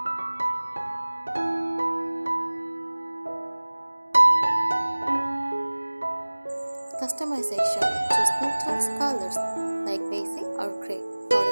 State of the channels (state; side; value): inverted; both; correlation -1.00